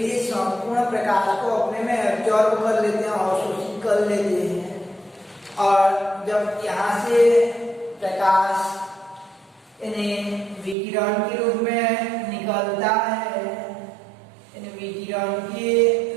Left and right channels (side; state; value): left; drops out; at 10.8 s